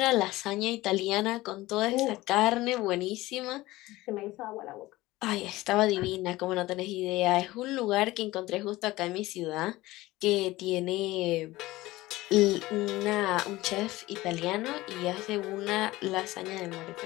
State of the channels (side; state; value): right; quieter; 18.5 dB